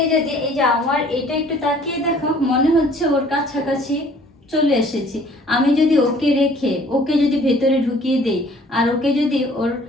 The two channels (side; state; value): both; normal; correlation 0.55